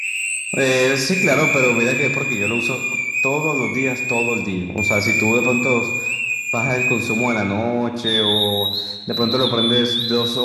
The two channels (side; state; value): both; identical; correlation 1.00